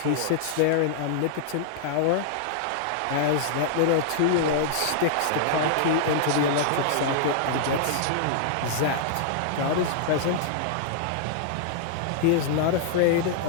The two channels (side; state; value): both; different; correlation -0.01